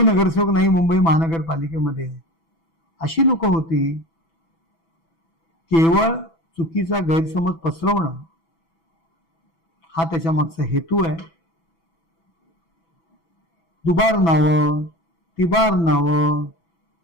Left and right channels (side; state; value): right; late; 6.1 ms